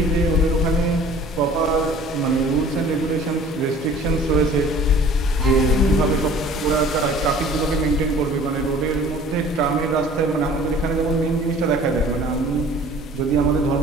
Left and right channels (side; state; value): both; normal; correlation 0.49